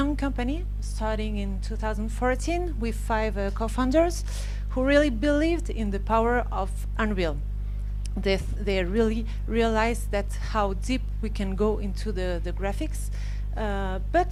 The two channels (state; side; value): identical; both; correlation 1.00